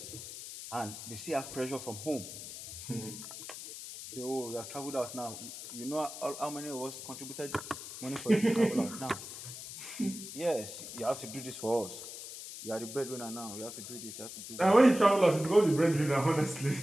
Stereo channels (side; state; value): left; noise; hiss, 10 dB below the sound